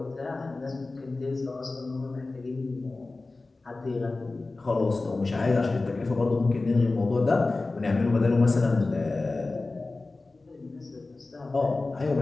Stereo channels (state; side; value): quieter; right; 3.4 dB